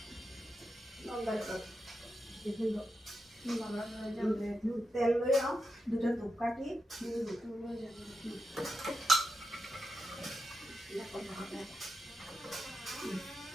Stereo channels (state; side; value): normal; both; correlation 0.88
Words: তেল লৈ আও দুটা ধূপকাঠি